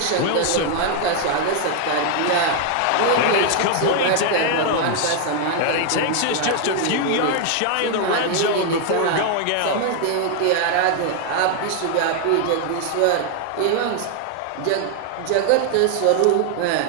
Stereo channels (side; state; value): both; different; correlation 0.00